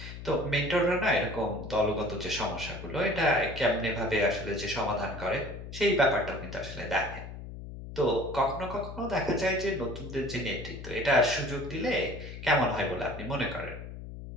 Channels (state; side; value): noise; left; hum, 11 dB below the sound